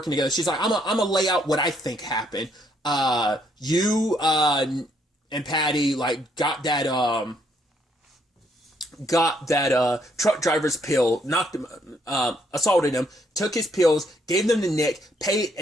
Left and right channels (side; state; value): both; normal; correlation 0.70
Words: together. She's like, I'm gonna lay out what I think happened. You and Patty like got that truck driver's pill, knocked him, assaulted him, took his pills, gave them to Nick, paid